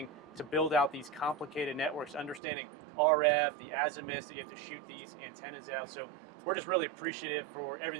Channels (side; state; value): left; drops out; at 2.4 s